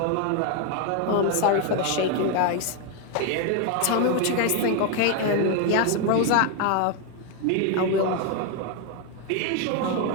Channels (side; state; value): both; different; correlation 0.01